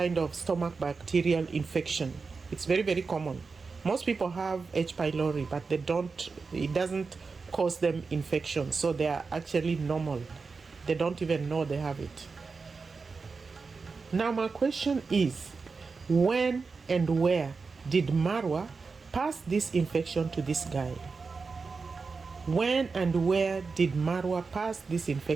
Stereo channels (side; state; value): left; quieter; 4.6 dB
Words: of stomach bacterial infection. It's very, very common. Most people have H. pylori, but it doesn't cause them infection. So they are actually normal. They don't even know they have it. Now, my question is, when and where did Marwa pass this infection to this guy? When and where did Marwa pass this